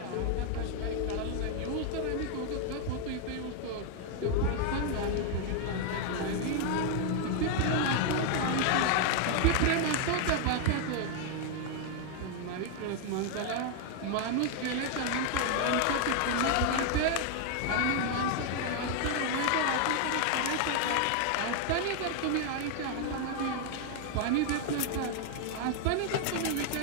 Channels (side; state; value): both; different; correlation 0.00